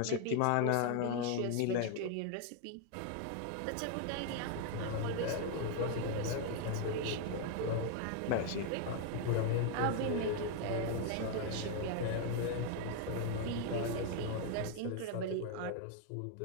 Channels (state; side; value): different; both; correlation 0.00